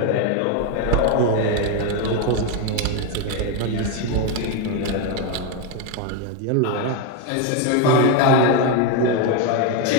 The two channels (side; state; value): both; different; correlation 0.02